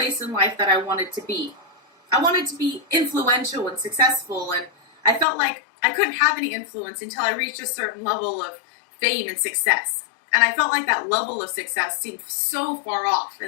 in life that I wanted to be. I wanted to be influential and successful, and I felt like I couldn't have any influence until I reached a certain level of fame and success. And I felt like that level of success seemed so far off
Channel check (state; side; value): drops out; right; at 5.2 s